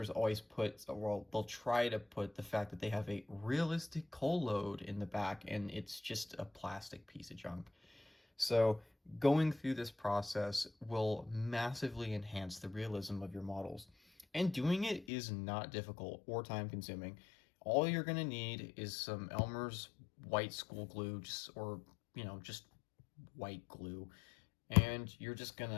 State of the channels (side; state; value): right; drops out; at 15.1 s